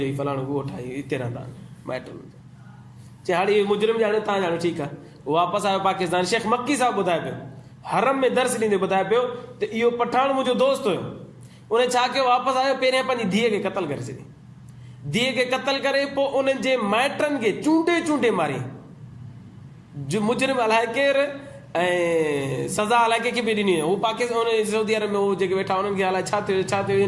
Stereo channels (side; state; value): both; identical; correlation 1.00